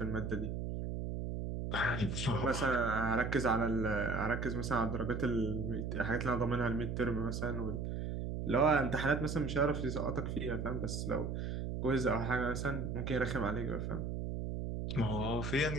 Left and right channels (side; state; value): right; noise; hum, 3 dB below the sound